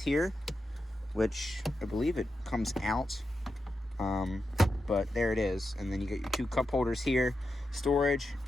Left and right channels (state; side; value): normal; both; correlation 0.88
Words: which I believe it comes out. But there it is. And then you get your 2 cup holders here, storage,